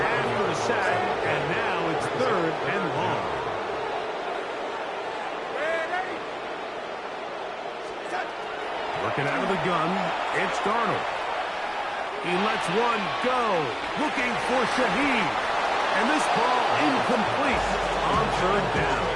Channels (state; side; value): identical; both; correlation 1.00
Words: the sack, and now it's third and long. Working out of the gun, it's Darnold. He lets one go, looking for Shaheed. And this ball incomplete on third down.